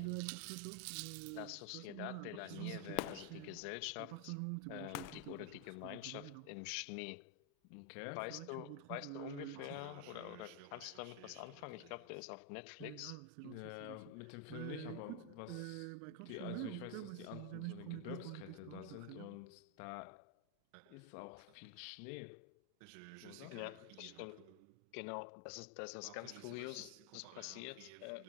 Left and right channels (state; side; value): different; both; correlation 0.01